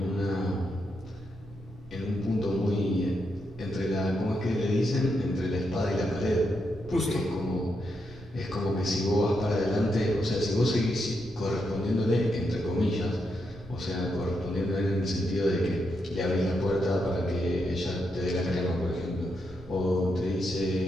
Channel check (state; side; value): noise; right; rumble, 19 dB below the sound